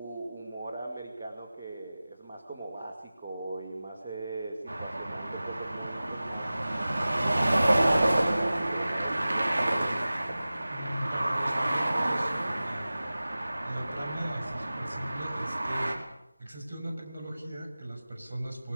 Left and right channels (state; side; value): inverted; both; correlation -0.97